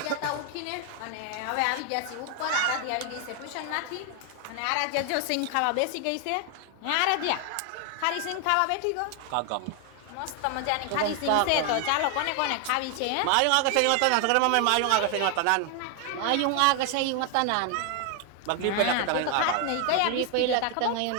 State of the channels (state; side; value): different; both; correlation 0.00